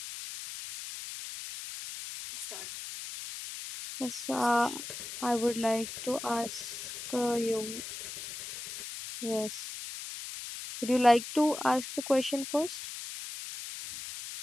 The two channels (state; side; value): noise; left; hiss, 9 dB below the sound